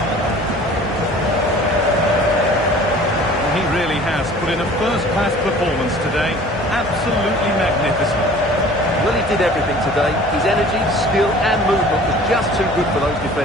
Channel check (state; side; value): normal; both; correlation 0.47